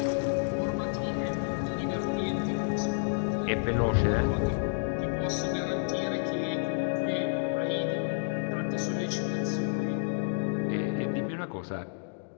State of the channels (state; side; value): silent; right; digital silence